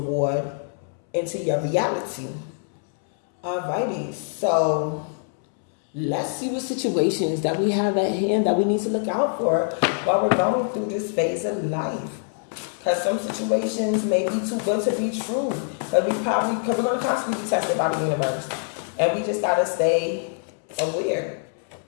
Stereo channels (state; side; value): silent; right; 62 dB below the other